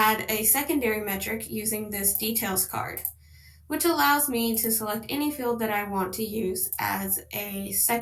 a secondary metric using this details card, which allows me to select any field that I want to use as a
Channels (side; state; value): both; identical; correlation 1.00